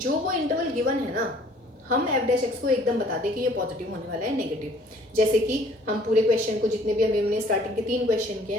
वो इंटरवल गिवन है ना, हम एफ डैश एक्स को एकदम बता दें कि ये पॉजिटिव होने वाला है, नेगेटिव. जैसे कि हम पूरे क्वेश्चन को, जितने भी अभी हमने स्टार्टिंग के 3 क्वेश्चन किए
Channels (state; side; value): normal; both; correlation 0.56